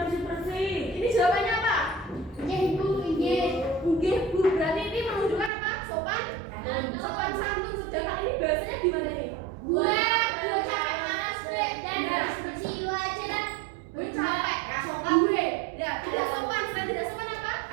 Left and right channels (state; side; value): drops out; left; at 5.5 s